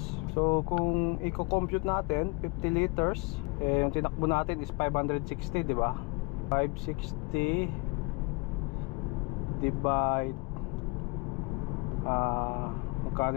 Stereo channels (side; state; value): right; quieter; 29.3 dB